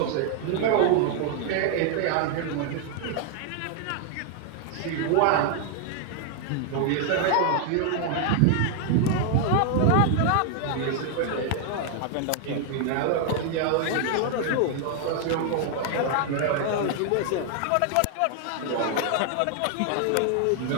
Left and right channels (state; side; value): different; both; correlation 0.00